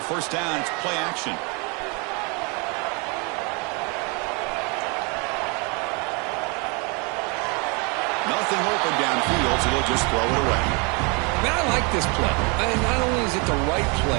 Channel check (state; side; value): quieter; left; 31.9 dB